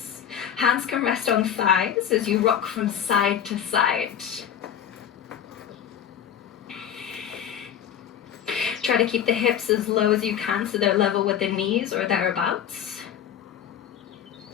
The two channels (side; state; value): right; quieter; 9.3 dB